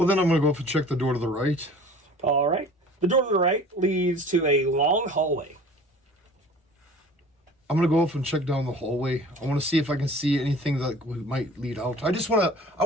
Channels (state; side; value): normal; both; correlation 0.45